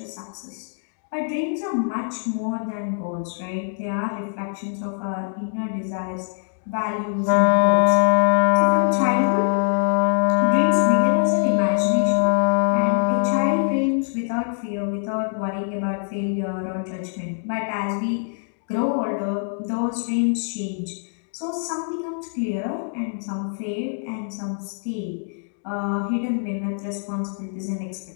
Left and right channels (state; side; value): silent; right; digital silence